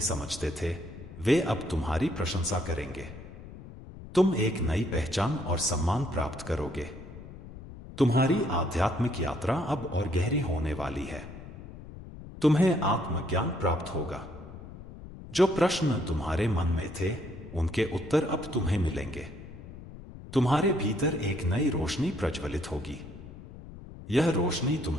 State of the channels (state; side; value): noise; left; rumble, 14 dB below the sound